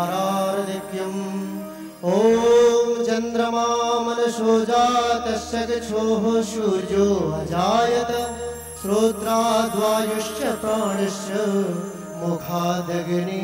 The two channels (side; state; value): both; identical; correlation 1.00